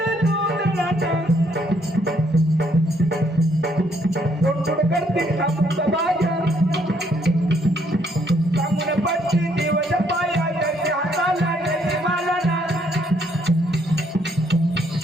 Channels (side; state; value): both; normal; correlation 0.69